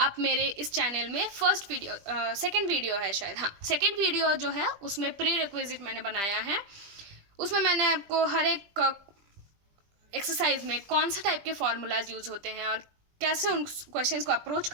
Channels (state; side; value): late; left; 20 ms